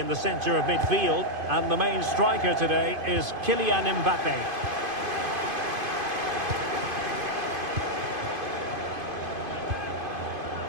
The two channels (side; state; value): left; late; 2.5 ms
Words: the centre of midfield. And the main striker today is Kylian Mbappé.